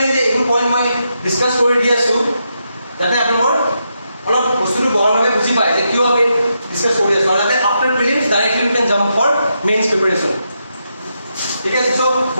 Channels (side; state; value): both; inverted; correlation -0.83